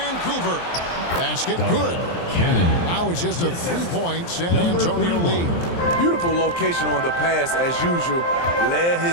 Basket good. Now it's just a 3-point San Antonio lead. Beautiful location on the pass as usual. Led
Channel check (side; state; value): right; late; 23 ms